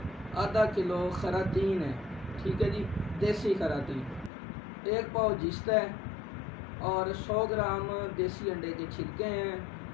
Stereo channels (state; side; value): drops out; right; at 4.3 s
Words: आधा किलो खरातीन है। ठीक है जी, देसी खरातीन, 1 पाव जिस्त है, और 100 ग्राम देसी अंडे के छिलके हैं,